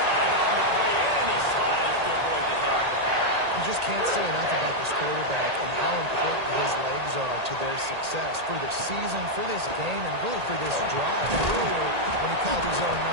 on the play, and he slides to avoid the hit. You just can't say enough about this quarterback and how important his legs are to their success for the season, for this game, and really for this drive. Earlier, when he called his own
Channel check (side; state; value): left; late; 1.8 ms